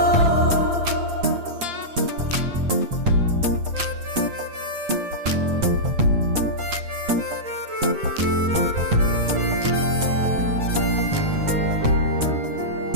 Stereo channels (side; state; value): left; late; 8.3 ms